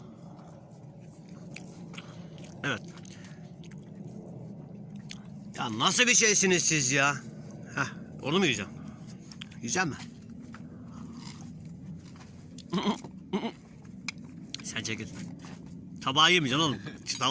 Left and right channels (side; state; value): both; identical; correlation 1.00